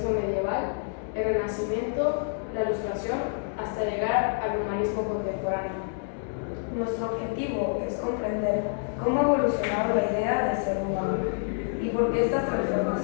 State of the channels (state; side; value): silent; right; digital silence